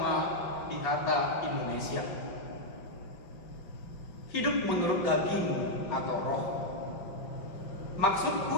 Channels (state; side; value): late; right; 5.5 ms